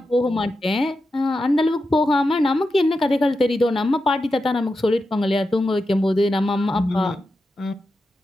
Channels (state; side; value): normal; both; correlation 0.89